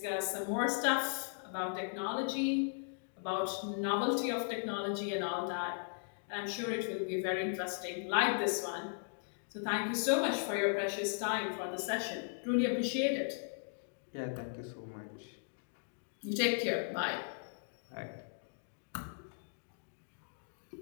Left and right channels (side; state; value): right; silent; digital silence